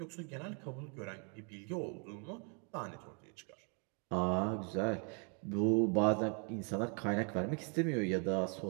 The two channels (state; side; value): quieter; left; 37.8 dB